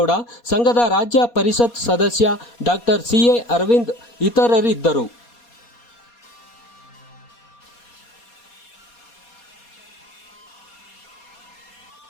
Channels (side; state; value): right; late; 4.2 ms